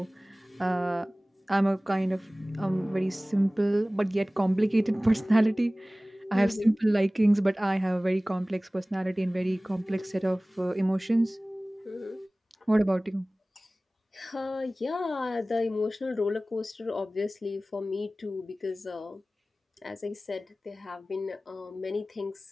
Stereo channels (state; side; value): normal; both; correlation 0.98